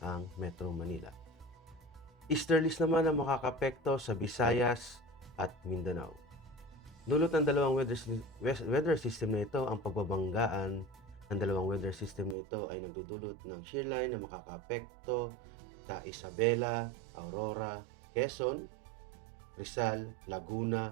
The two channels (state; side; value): drops out; left; at 12.4 s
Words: Metro Manila. Easterlies naman ang makakapekto sa Visayas at Mindanao. Dulot ng dalawang weather system na ito, ang pagbabanggaan ng dalawang weather system na ito ay nagdudulot ng shearline na makakaapekto sa Isabela, Aurora, Quezon, Rizal,